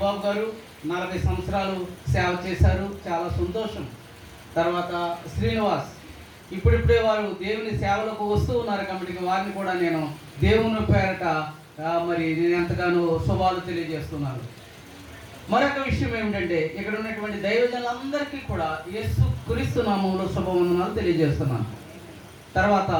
గారు 40 సంవత్సరాలు సేవ చేశారు, చాలా సంతోషం. తర్వాత శ్రీనివాస్ ఇప్పుడిప్పుడే వారు దేవుని సేవలకు వస్తూ ఉన్నారు కాబట్టి వారిని కూడా నేను దేవుని పేరట మరి నేను ఎంతగానో శుభాలు తెలియజేస్తున్నాను. మరొక విషయం ఏమిటంటే ఇక్కడ ఉన్నటువంటి దైవజనులందరికీ కూడా యేసు క్రీస్తు నామములో శుభవందనాలు తెలియజేస్తున్నాను. తర్వాత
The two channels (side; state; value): both; identical; correlation 1.00